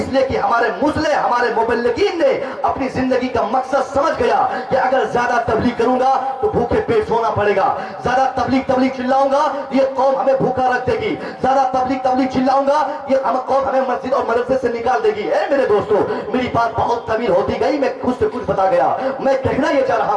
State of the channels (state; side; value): identical; both; correlation 1.00